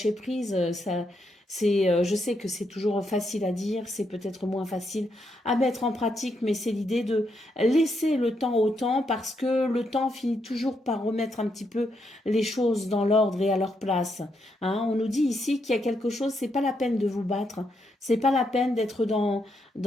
prise, ça, je sais que c'est toujours facile à dire, c'est peut-être moins facile à mettre en pratique, mais c'est l'idée de laisser le temps au temps parce que le temps finit toujours par remettre un petit peu les choses dans l'ordre et à leur place. Hein, on nous dit ici qu'il y a quelque chose, c'est pas la peine de vous battre, C'est pas la peine d'être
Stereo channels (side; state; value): both; normal; correlation 0.79